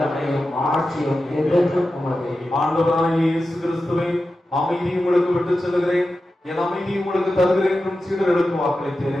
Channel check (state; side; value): normal; both; correlation 0.92